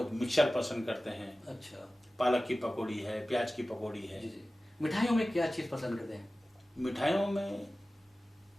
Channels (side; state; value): both; normal; correlation 0.96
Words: मिक्सर पसंद करते हैं। अच्छा पालक की पकौड़ी है, प्याज की पकौड़ी है। जी जी। मिठाइयों में क्या चीज़ पसंद करते हैं? मिठाइयों में